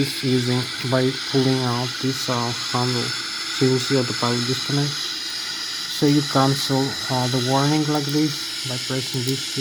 using by pulling out this handle. So you will see autopilot disconnect. So you cancel the warning like this. by pressing this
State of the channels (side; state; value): both; identical; correlation 1.00